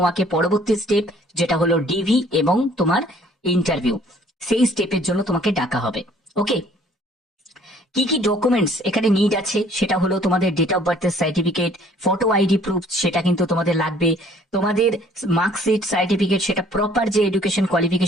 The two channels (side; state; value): both; normal; correlation 0.58